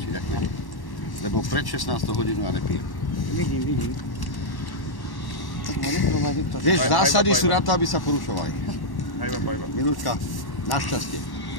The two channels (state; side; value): late; right; 1.1 ms